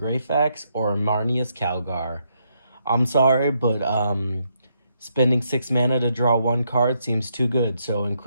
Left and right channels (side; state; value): both; inverted; correlation -0.77